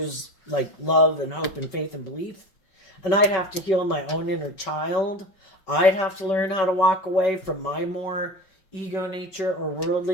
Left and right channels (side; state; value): right; late; 5.3 ms